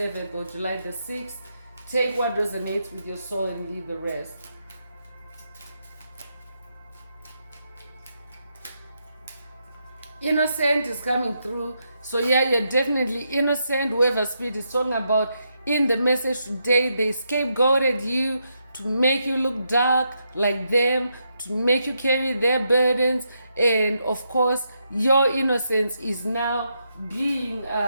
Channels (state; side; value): inverted; both; correlation -0.81